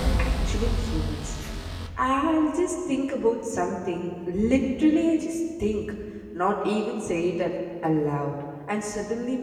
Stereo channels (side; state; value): both; identical; correlation 1.00